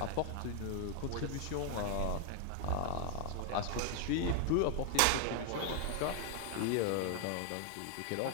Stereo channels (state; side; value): different; both; correlation 0.00